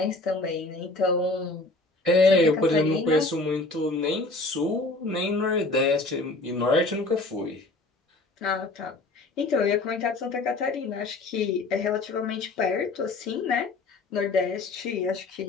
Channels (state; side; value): quieter; right; 3.2 dB